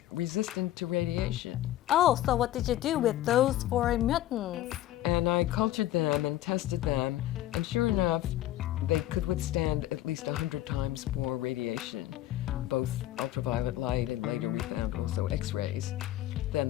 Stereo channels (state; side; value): quieter; right; 14.1 dB